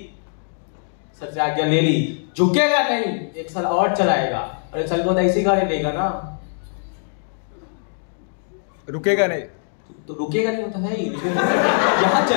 सर से आज्ञा ले ली। झुकेगा नहीं, एक साल और चलाएगा, और एक साल बाद ऐसी गाड़ी लेगा ना, रुकेगा नहीं, तो रुकेगा नहीं होता है ही, लेकिन यहाँ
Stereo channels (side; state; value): right; silent; digital silence